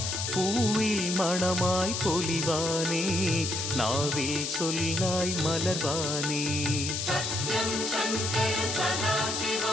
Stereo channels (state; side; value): noise; left; hiss, 2 dB below the sound